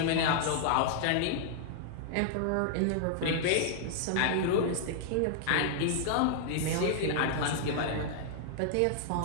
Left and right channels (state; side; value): different; both; correlation -0.01